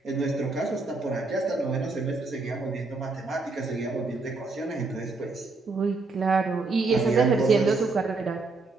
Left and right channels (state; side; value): quieter; left; 3.7 dB